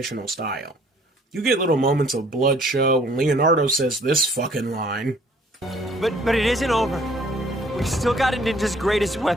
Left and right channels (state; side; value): normal; both; correlation 0.58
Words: style. You get little moments of blood show when Leonardo says this fucking line. But it isn't over. We still got a ninja's greatest